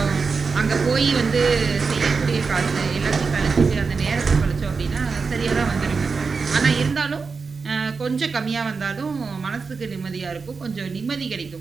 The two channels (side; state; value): left; quieter; 4.8 dB